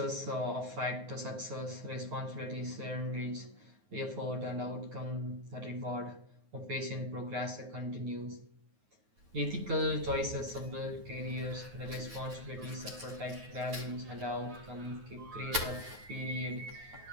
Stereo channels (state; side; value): late; left; 9.5 ms